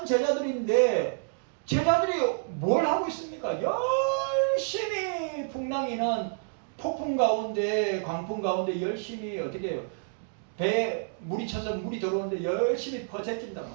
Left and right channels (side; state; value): left; silent; digital silence